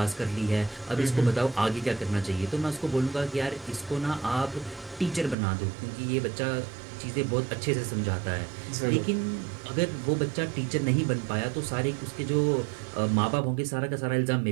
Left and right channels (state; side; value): drops out; left; at 5.4 s